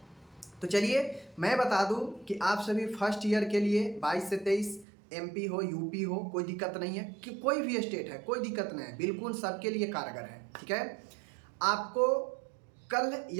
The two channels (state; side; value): drops out; left; at 4.9 s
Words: तो चलिए मैं बता दूं कि आप सभी फर्स्ट ईयर के लिए 22 से 23 एमपी हो, यूपी हो, कोई दिक्कत नहीं है, कि कोई भी स्टेट है कोई दिक्कत नहीं है, बिल्कुल सबके लिए कारगर है। ठीक है, आपको कल